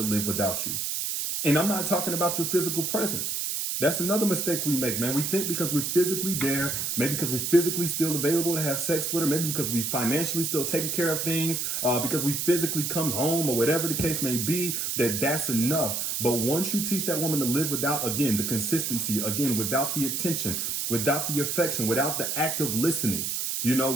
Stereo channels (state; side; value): noise; right; hiss, 1 dB below the sound